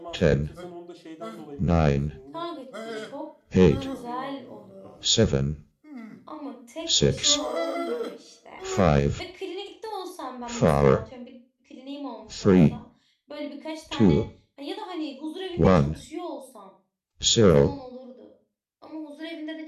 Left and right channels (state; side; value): identical; both; correlation 1.00